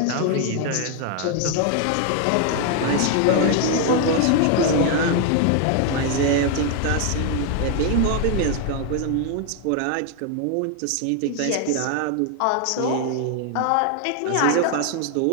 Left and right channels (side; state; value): both; different; correlation 0.01